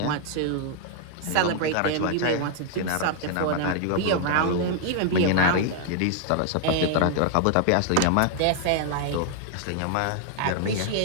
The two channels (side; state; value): both; different; correlation 0.00